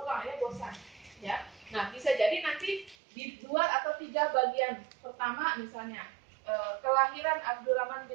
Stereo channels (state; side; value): drops out; left; at 3.0 s